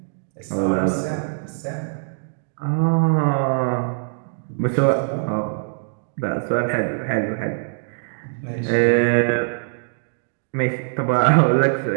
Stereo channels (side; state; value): left; silent; digital silence